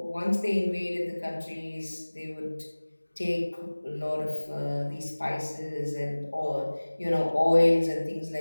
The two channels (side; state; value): both; inverted; correlation -1.00